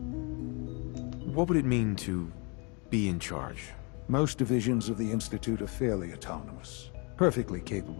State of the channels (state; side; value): quieter; right; 32.7 dB